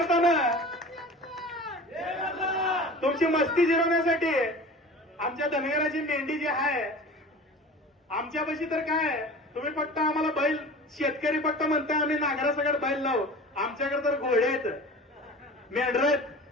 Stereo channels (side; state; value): both; normal; correlation 0.38